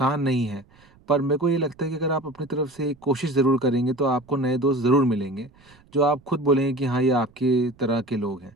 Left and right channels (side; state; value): right; noise; rumble, 29 dB below the sound